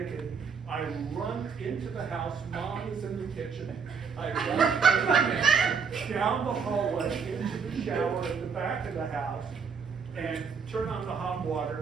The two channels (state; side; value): quieter; left; 6.0 dB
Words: I run into the house. Mom is in the kitchen. I run down the hallway into the shower at the back of the house and turn on the hot